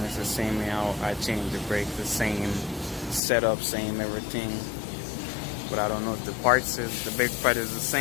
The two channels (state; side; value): drops out; right; at 3.2 s